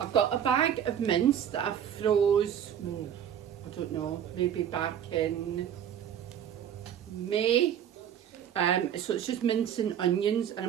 got a bag of mince that I froze, I don't know, maybe back in May. So it's just mince and onions, and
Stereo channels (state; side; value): quieter; left; 9.4 dB